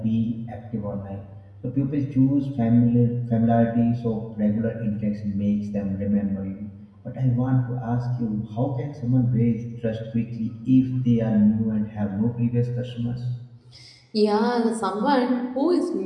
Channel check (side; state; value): both; identical; correlation 1.00